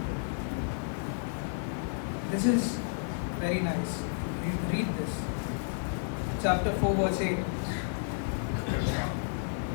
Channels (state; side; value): silent; right; 57 dB below the other